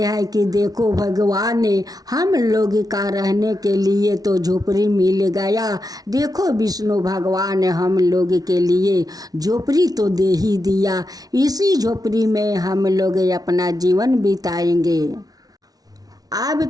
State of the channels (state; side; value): late; left; 0.18 ms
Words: कि देखो भगवान ने हम लोग का रहने के लिए तो झोपड़ी मिल गया, देखो विष्णु भगवान ने हम लोग के लिए झोपड़ी तो दे ही दिया, इसी झोपड़ी में हम लोग अपना जीवन बिताएंगे। अब